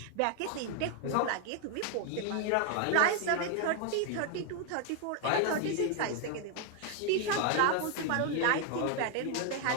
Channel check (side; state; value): both; different; correlation 0.00